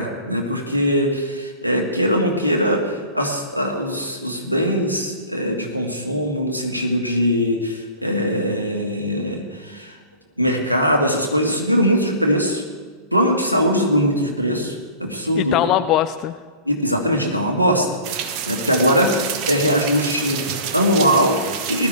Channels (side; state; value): both; inverted; correlation -0.45